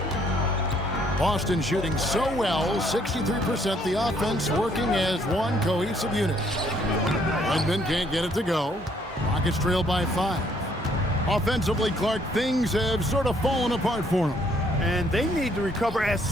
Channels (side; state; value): both; normal; correlation 0.66